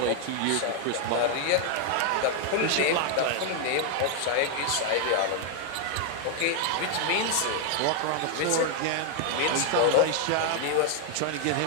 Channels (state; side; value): different; both; correlation 0.00